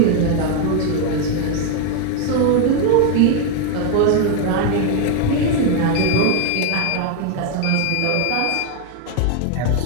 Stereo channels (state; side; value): different; both; correlation 0.01